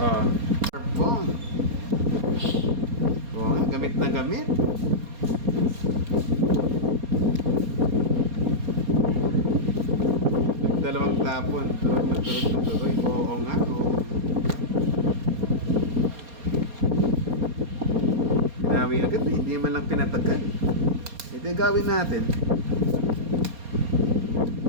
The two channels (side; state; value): left; late; 4.2 ms